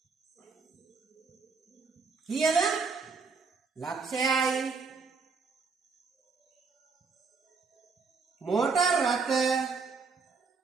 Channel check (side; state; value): left; quieter; 4.8 dB